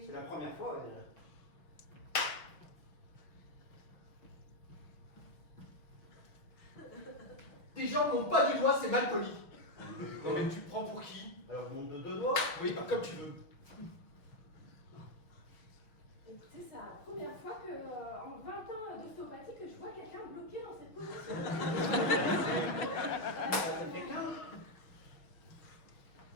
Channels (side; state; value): right; late; 6.3 ms